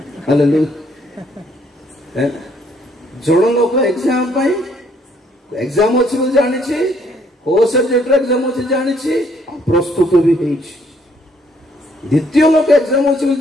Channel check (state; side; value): normal; both; correlation 0.66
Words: हालेलुया। जन लोक एग्जाम अच्छी बोली जानी को सब्जेक्ट एग्जाम अच्छी जानी प्रस्तुत भी द्वितीय लोक एग्जाम अच्छी